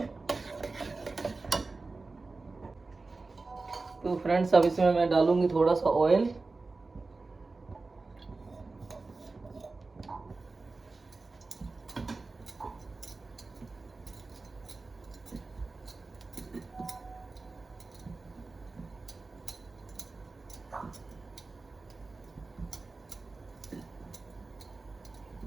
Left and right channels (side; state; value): left; quieter; 3.7 dB